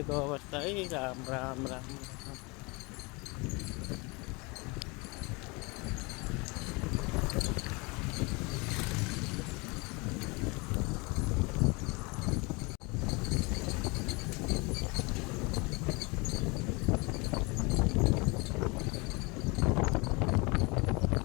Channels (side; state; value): right; quieter; 27.5 dB